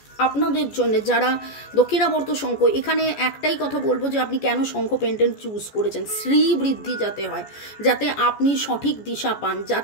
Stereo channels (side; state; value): right; late; 14 ms